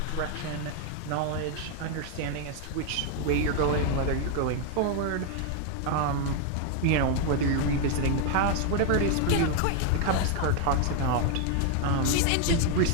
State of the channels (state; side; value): different; both; correlation 0.00